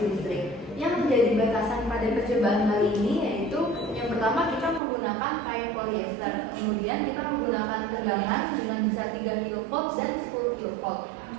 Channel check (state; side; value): drops out; left; at 4.8 s